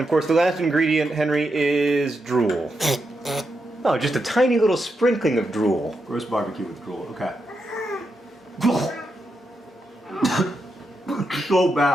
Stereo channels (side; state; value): both; normal; correlation 0.85